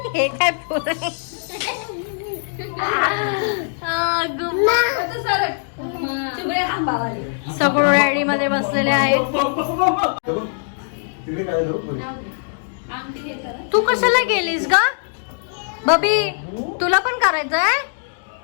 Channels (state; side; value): silent; right; digital silence